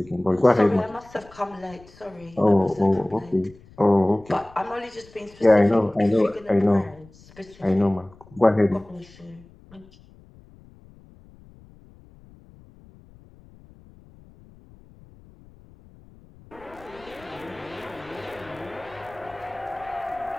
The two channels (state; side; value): noise; left; rumble, 24 dB below the sound